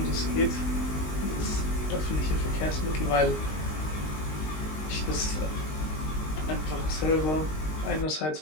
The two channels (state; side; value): late; right; 19 ms